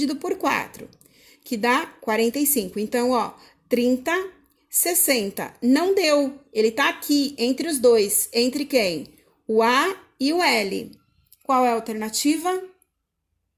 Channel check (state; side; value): identical; both; correlation 1.00